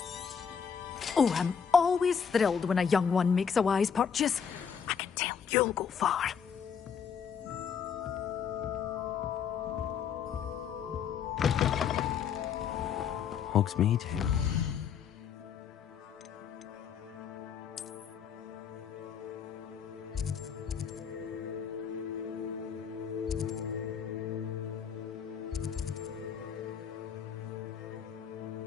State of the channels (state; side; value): quieter; right; 7.1 dB